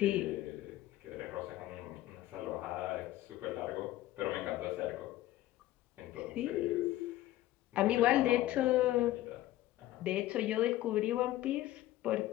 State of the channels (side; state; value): right; quieter; 15.2 dB